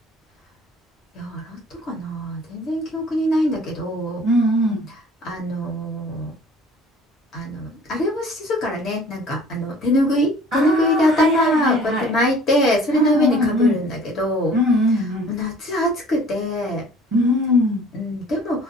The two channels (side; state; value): both; normal; correlation 0.51